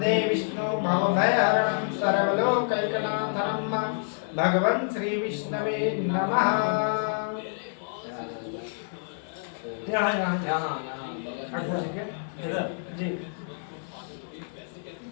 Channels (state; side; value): silent; right; digital silence